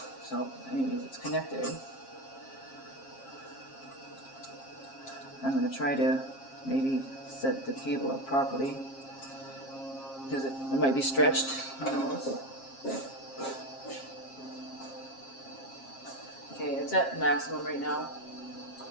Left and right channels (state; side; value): late; right; 7.4 ms